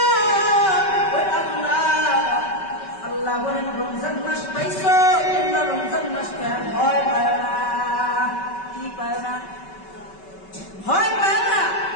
ওই আল্লাহ বলেন, রমজান মাস পাইছো, তোমরা রমজান মাস ভয় পায় না। কি পায় না? ভয় পায় না।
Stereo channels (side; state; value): right; late; 5.2 ms